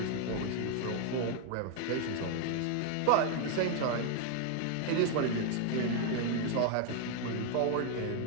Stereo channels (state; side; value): different; both; correlation 0.00